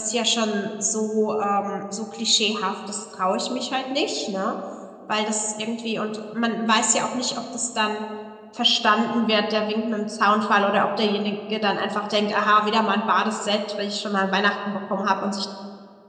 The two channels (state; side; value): identical; both; correlation 1.00